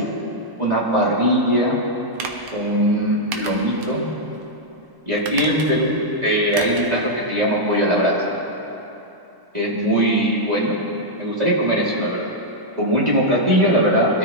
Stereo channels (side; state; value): left; late; 1.1 ms